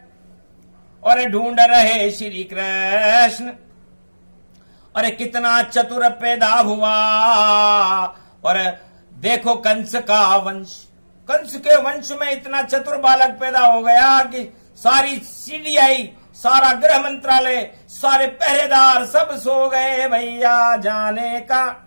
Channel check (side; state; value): both; inverted; correlation -1.00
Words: और ढूंढ रहे श्री कृष्ण। अरे कितना चतुर पैदा हुआ। और देखो कंस का वंश, कंस के वंश में इतना चतुर बालक पैदा हो गया कि सारी सीडीआई, सारा गृह मंत्रालय, सारे पहरेदार सब सो गए भैया, जाने का